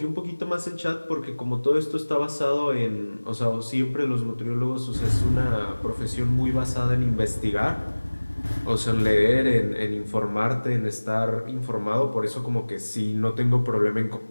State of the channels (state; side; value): inverted; both; correlation -1.00